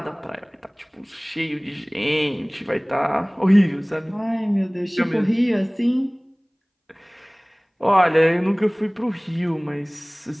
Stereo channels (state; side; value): identical; both; correlation 1.00